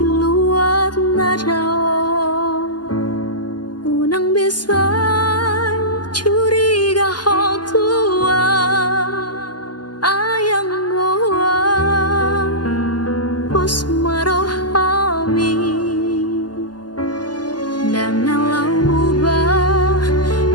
luar nada unang bisa curiga hal tua ayang goa bos marohami dan nalau ubah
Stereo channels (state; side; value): late; right; 0.70 ms